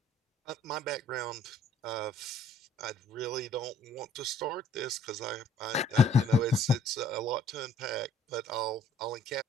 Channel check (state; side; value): normal; both; correlation 0.60